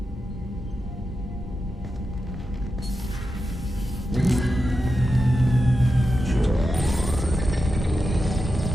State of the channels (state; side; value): normal; both; correlation 0.89